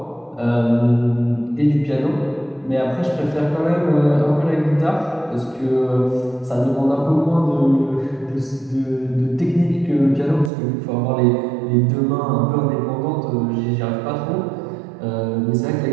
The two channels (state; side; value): drops out; left; at 10.5 s